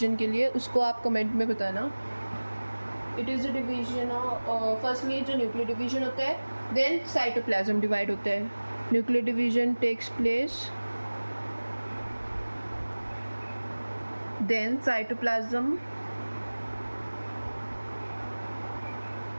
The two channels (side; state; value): both; inverted; correlation -1.00